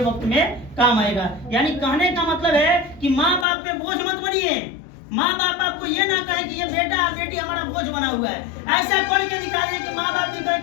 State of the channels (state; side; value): drops out; right; at 3.5 s